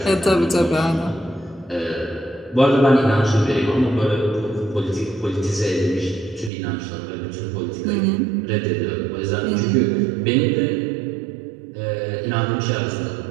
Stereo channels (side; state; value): left; drops out; at 6.5 s